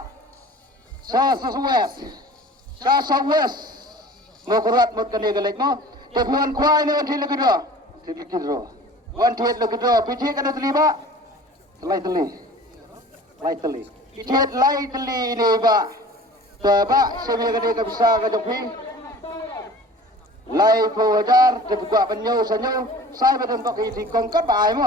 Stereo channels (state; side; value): normal; both; correlation 0.43